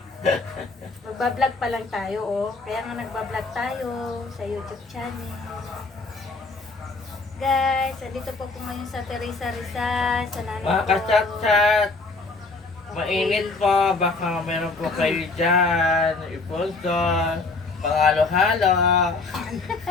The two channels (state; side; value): quieter; right; 3.8 dB